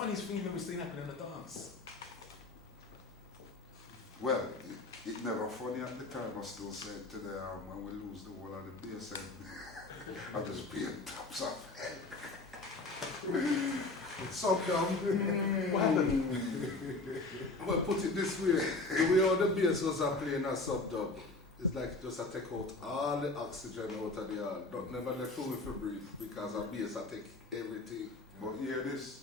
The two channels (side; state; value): right; quieter; 3.2 dB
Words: thing you've ever seen happen in the dance? Well, it never funny at the time. I still say it today when we lose the whole of the bass and I just pay tops off. So what happened? Well, put it this way, the way all the bass was playing a sub-dub, it's like just I take out all the oxygen out of the air. Don't never let room for breathe because a bass I take everything. But hear